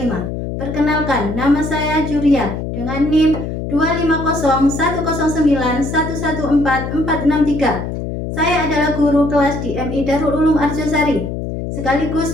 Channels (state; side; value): noise; left; hum, 5 dB below the sound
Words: Perkenalkan, nama saya Juria dengan NIM 2501091144463. Saya adalah guru kelas di MI Darul Ulum Arjosari, sekaligus